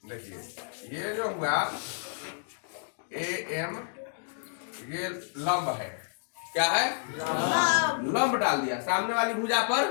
देखिए ये जो हुआ AM, ये लंब है। क्या है? लंब डाल दिया सामने वाली भुजा पर।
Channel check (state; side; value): silent; right; digital silence